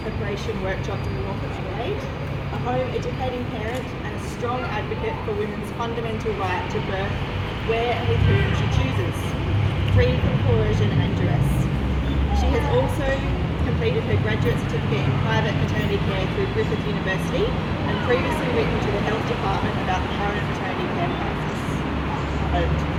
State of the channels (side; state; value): both; identical; correlation 1.00